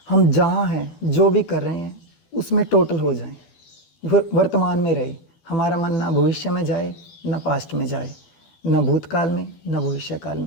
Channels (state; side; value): late; right; 12 ms